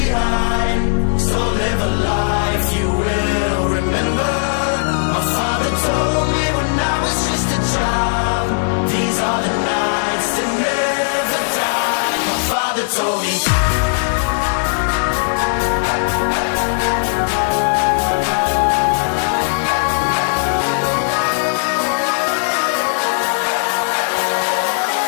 so live a life you will remember. My father told me when I was just a child, these are the nights that never die. My father told me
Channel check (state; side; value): silent; right; digital silence